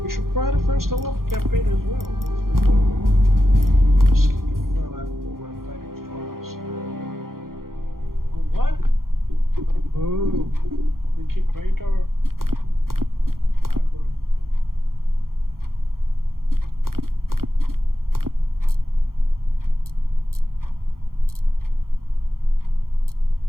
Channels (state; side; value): late; left; 0.92 ms